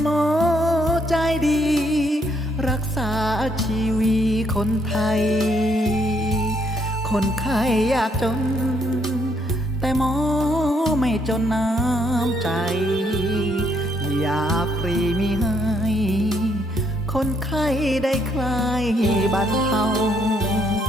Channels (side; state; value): both; normal; correlation 0.72